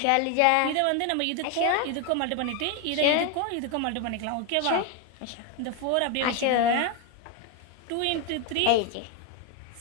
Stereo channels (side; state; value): both; different; correlation 0.01